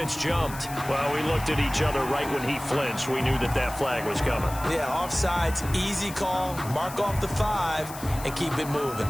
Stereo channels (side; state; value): left; noise; hiss, 14 dB below the sound